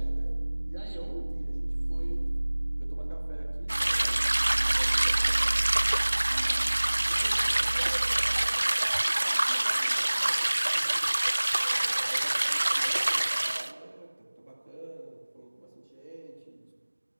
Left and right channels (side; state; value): both; inverted; correlation -1.00